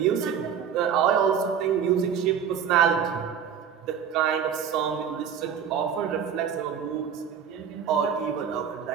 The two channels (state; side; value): quieter; left; 7.7 dB